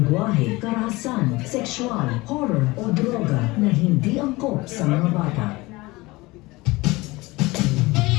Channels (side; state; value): right; quieter; 21.8 dB